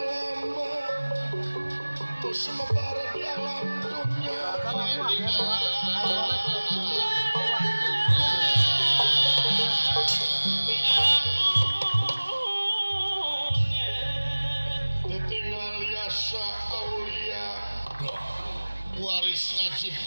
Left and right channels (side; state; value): both; inverted; correlation -1.00